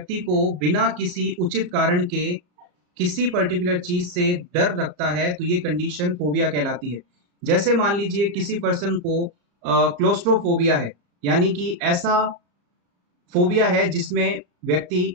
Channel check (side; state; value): left; late; 34 ms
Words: को बिना किसी उचित कारण के किसी पर्टिकुलर चीज से डर लगता है तो ये कंडीशन फोबिया कहलाती है। जैसे मान लीजिए किसी पर्सन को क्लोस्ट्रोफोबिया है, यानी कि ऐसा फोबिया है जिसमें व्यक्ति